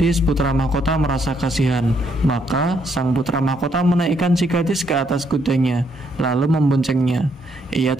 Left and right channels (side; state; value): both; normal; correlation 0.73